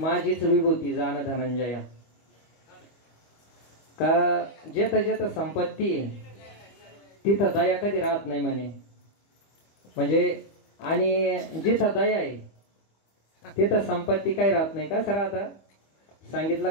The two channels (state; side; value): late; right; 25 ms